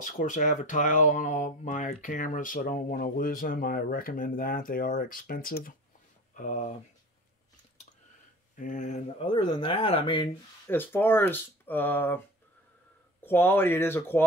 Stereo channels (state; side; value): normal; both; correlation 0.37